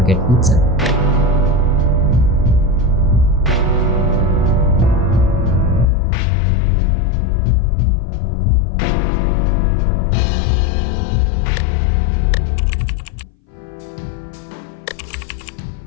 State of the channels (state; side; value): drops out; right; at 5.9 s